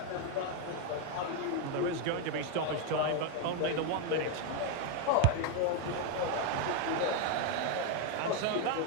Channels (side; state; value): both; different; correlation 0.01